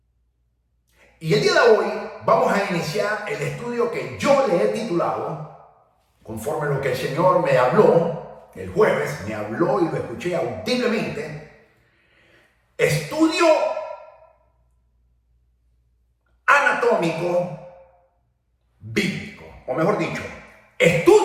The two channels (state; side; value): identical; both; correlation 1.00